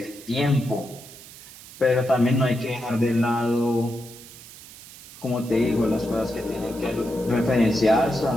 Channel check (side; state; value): right; noise; hiss, 18 dB below the sound